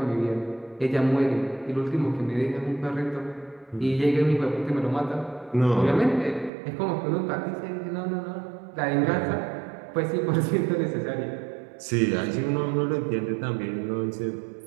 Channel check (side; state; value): left; drops out; at 6.5 s